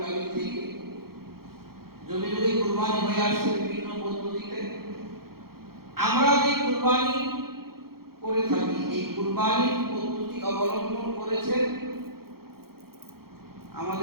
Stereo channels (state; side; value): late; left; 0.94 ms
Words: থেকে। যুগে যুগে কুরবানি হয়ে আসছে বিভিন্ন পদ্ধতিতে। আমরা যে কুরবানি করে থাকি, এই কুরবানির পদ্ধতি অবলম্বন করেছেন